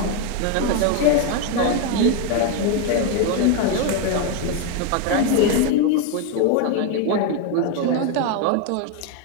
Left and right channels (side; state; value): both; different; correlation 0.01